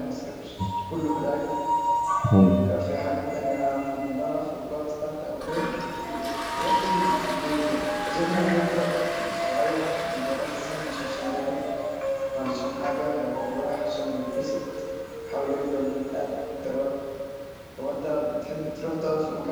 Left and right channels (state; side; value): identical; both; correlation 1.00